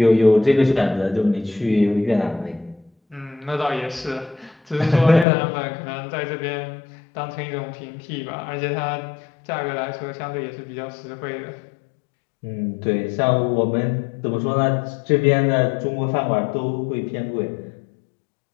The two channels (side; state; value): right; drops out; at 5.2 s